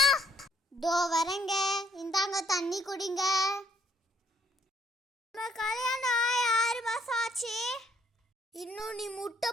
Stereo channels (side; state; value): both; normal; correlation 0.67